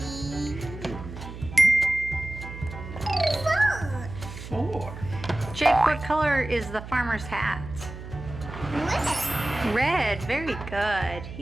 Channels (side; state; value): right; noise; hum, 11 dB below the sound